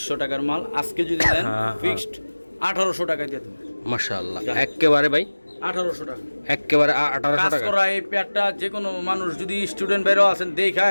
টাকার মাল। আজকে যদি নেন হ্যাঁ, ফিক্সড 1800 টাকা দিয়ে দেন। মাশাআল্লাহ, একেবারে ভাই 1800 টাকা একেবারে 1800 কাজ টাকা। করা এই পেয়ারটা যে কোনো মানুষ, যদি স্টুডেন্ট বেরো আছেন দেখা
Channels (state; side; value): inverted; both; correlation -1.00